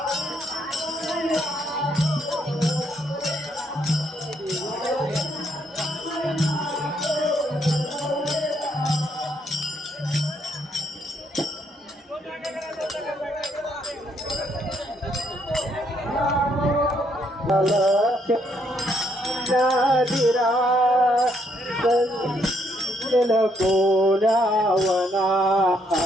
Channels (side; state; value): both; normal; correlation 0.72